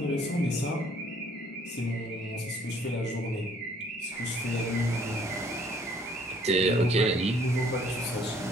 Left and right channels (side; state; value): both; normal; correlation 0.60